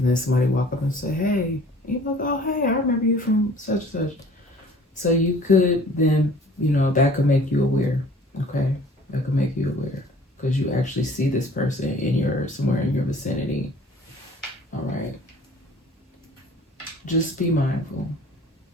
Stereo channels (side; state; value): both; normal; correlation 0.50